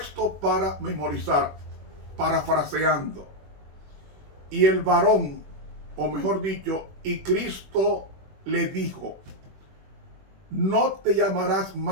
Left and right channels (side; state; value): left; late; 21 ms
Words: para memorizar, parafraseando. Y el varón, o mejor dicho, y Cristo le dijo: no te llamarás